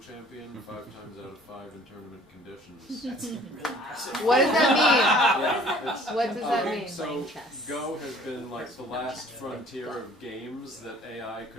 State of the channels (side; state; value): both; normal; correlation 0.53